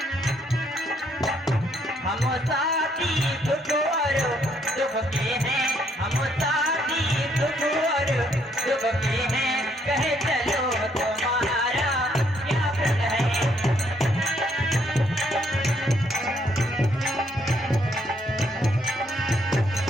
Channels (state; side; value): normal; both; correlation 0.70